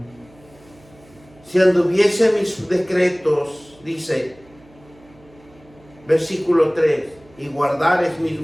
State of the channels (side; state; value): right; noise; hum, 27 dB below the sound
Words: Si anduviese mis decretos, dice, versículo 3, y guardares mis